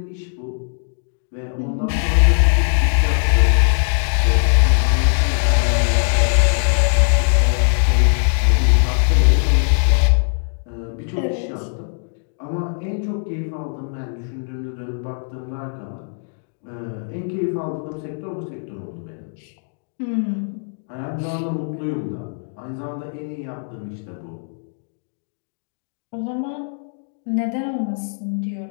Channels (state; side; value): silent; right; digital silence